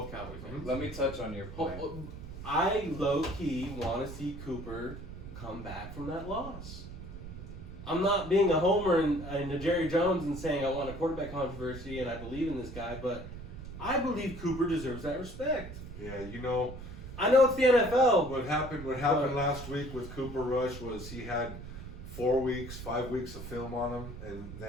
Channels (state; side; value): noise; right; rumble, 11 dB below the sound